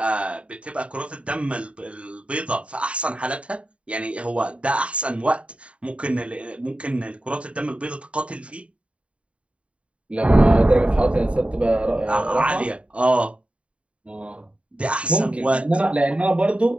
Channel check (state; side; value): late; left; 0.062 ms